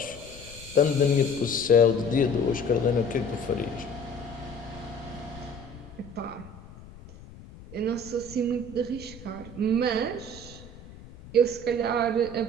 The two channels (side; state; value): left; noise; rumble, 18 dB below the sound